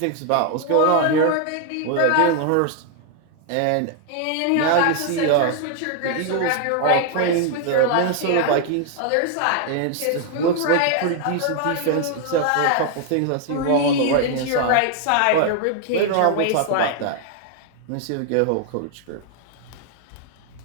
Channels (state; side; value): different; both; correlation 0.00